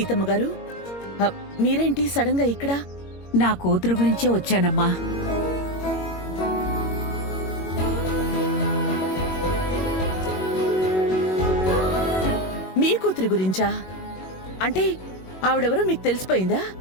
గారు, మీరేంటి సడన్ గా ఇక్కడ? నా కూతురు గురించే వచ్చానమ్మా. మీ కూతురి గురించా? అంటే ఆవిడెవరో మీకు తెలిసిపోయిందా?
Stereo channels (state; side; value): late; right; 21 ms